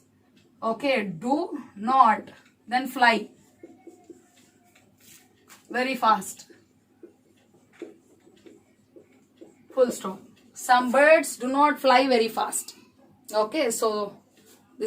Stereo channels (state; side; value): identical; both; correlation 1.00